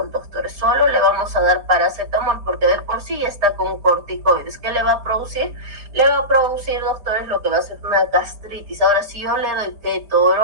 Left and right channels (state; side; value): late; left; 4.6 ms